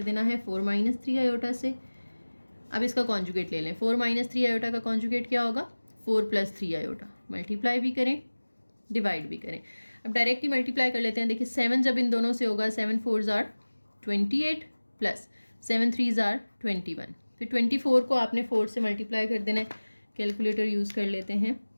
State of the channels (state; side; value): inverted; both; correlation -1.00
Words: देना है, 4 - 3 आयोटा से। अब इसका कॉन्जुगेट ले लें, 4 - 3 आयोटा का कॉन्जुगेट क्या होगा, 4 + 3 आयोटा, मल्टीप्लाई भी करें डिवाइड भी करें। अब डायरेक्ट ही मल्टीप्लाई कर लेते हैं, देखिए 7 जब इन दोनों से होगा, 7 4 ज़ार 28 + 7 3 ज़ार 21, फिर 24 को आपने 4 से मल्टीप्लाई कर देना है, कैलकुलेटर यूज़ कर लेते हैं,